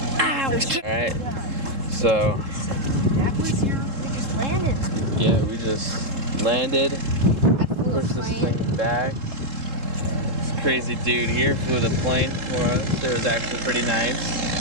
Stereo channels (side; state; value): left; late; 3.7 ms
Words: Alright. So, That was your biggest landing. yeah, we just landed, I flew a pushed this plane. thing back. This crazy dude here flew the plane for us. It was actually pretty nice.